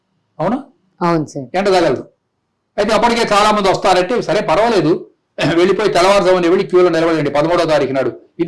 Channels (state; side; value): identical; both; correlation 1.00